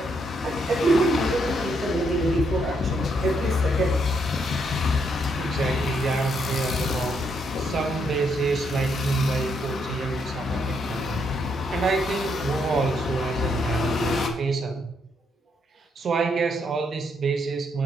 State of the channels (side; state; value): both; normal; correlation 0.75